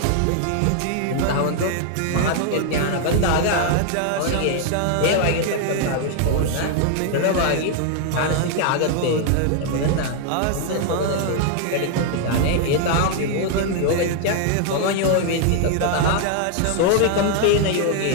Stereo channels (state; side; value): different; both; correlation 0.00